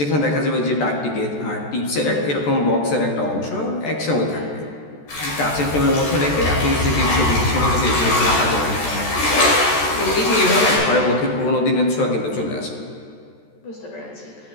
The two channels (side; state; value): right; late; 14 ms